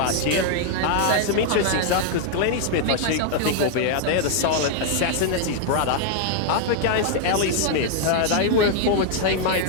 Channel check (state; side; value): different; both; correlation 0.00